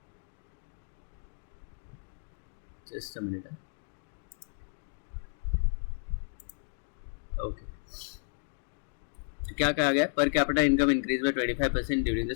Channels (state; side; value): silent; right; digital silence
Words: Just a minute. Okay, तो क्या कहा गया? Per capita income increase by 25% during the